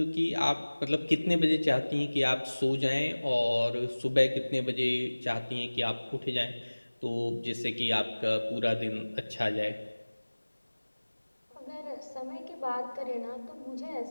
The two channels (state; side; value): inverted; both; correlation -1.00